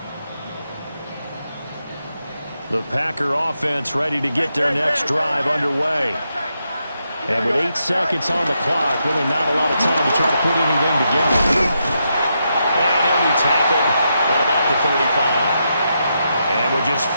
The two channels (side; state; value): both; inverted; correlation -0.83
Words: The Packer offense ready to get their next drive underway. And with 8 seconds on the clock, really not a lot of time to try to put anything together. And he'll be tackled at about the 35. And with just